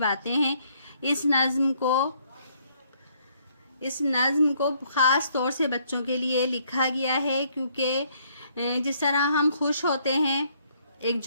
हैं। इस नज़्म को ख़ास तौर से बच्चों के लिए लिखा गया है, क्योंकि जिस तरह हम खुश होते हैं, एक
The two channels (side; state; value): both; inverted; correlation -0.67